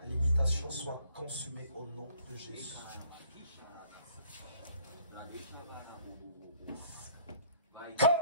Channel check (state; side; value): inverted; both; correlation -0.59